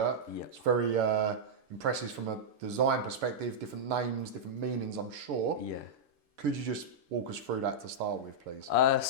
Yeah. It's very impressive from a design perspective. Different names, different meanings, I'm sure. Yeah. Could you just walk us through that to start with, please?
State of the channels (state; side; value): late; left; 6.8 ms